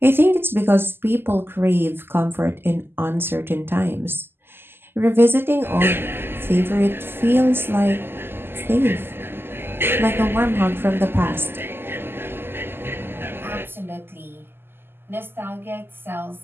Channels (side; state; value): left; late; 0.11 ms